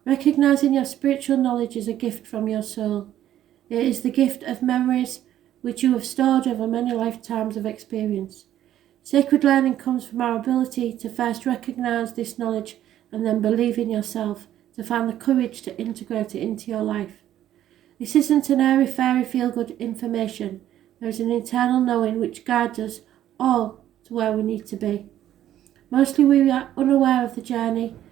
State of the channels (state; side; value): quieter; left; 12.0 dB